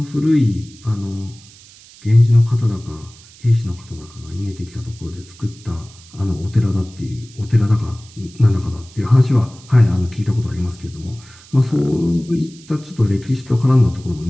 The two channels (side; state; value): right; noise; hiss, 23 dB below the sound